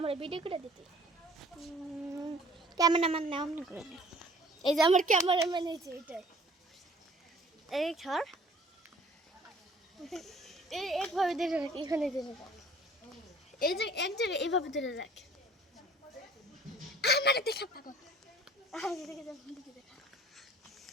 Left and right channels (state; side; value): normal; both; correlation 0.53